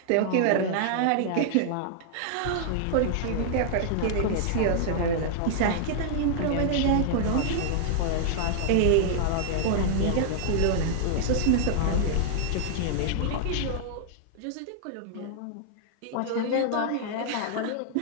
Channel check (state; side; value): different; both; correlation -0.01